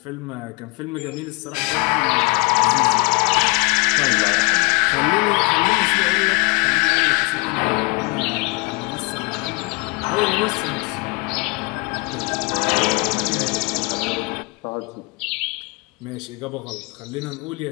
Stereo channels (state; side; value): quieter; right; 28.0 dB